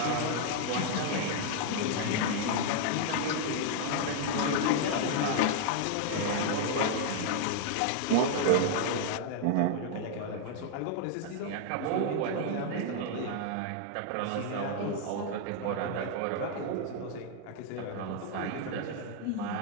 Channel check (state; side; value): different; both; correlation 0.00